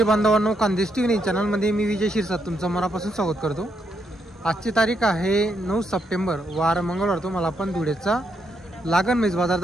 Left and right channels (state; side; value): normal; both; correlation 0.78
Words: बांधवांनो, खानदेश टीव्ही चॅनलमध्ये मी विजय शिरसाट तुमचं मनापासून स्वागत करतो। आजची तारीख आहे 9 सप्टेंबर, वार मंगळवार। तुम्हाला आपण धुळेचा लागण म्हैस बाजार